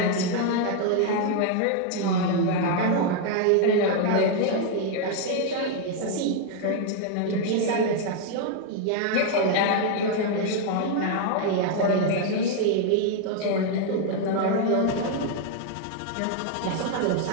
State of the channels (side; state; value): both; different; correlation 0.00